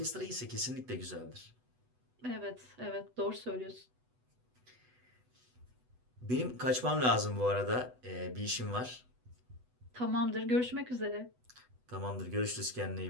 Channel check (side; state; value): left; late; 8.0 ms